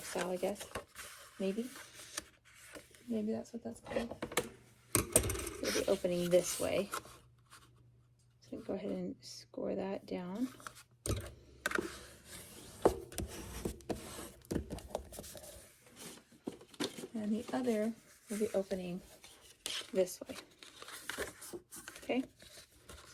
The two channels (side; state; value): both; identical; correlation 1.00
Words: style, I guess. Maybe. Maybe that's what that's called. So it'll be opening this way. So go ahead and score that down. And the other will be opening this way. Okay?